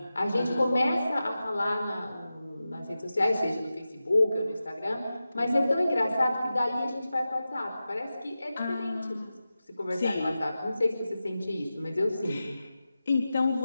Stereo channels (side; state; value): both; inverted; correlation -0.93